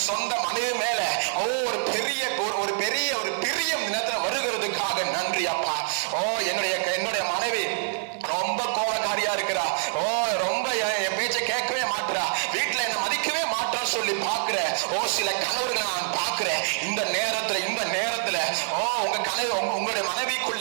சொந்த மனைவி மேல ஒரு பெரிய பிரியம் நேரத்துல வருகிறதுக்காக நன்றி அப்பா. என்னுடைய மனைவி ரொம்ப கோபக்காரியா இருக்கிறா, ரொம்ப என் பேச்சை கேட்கவே மாட்டுறா, வீட்டுல என்ன மதிக்கவே மாட்டான்னு சொல்லி பாக்குற சில கணவர்களை நான் பாக்குறேன். இந்த நேரத்துல உங்க கனவு, உங்களுடைய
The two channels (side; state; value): left; silent; digital silence